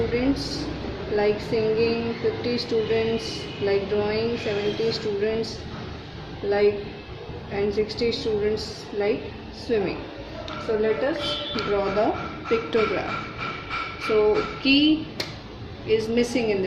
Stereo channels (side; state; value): both; identical; correlation 1.00